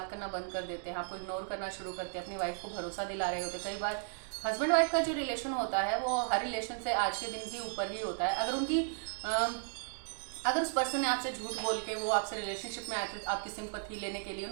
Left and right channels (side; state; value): left; silent; digital silence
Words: करना बंद कर देते हैं, आपको इग्नोर करना शुरू करते हैं, अपनी वाइफ को भरोसा दिला रहे होते हैं। कई बार हस्बैंड वाइफ का जो रिलेशन होता है वो हर रिलेशन से आज के दिन भी ऊपर ही होता है। अगर उस पर्सन ने आपसे झूठ बोल के वो आपसे रिलेशनशिप में आए थे आपकी सिंपैथी लेने के लिए,